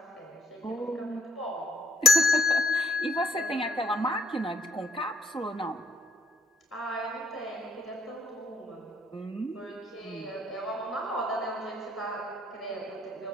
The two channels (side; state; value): both; normal; correlation 0.63